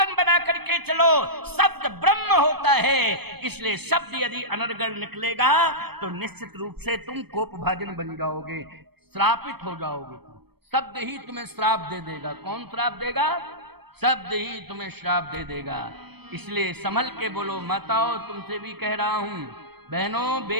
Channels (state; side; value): late; left; 0.97 ms